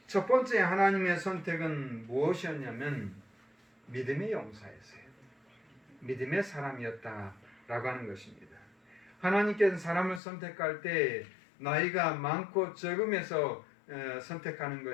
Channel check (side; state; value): right; drops out; at 10.2 s